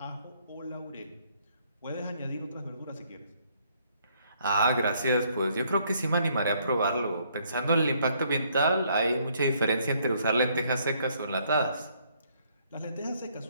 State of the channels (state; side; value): inverted; both; correlation -0.67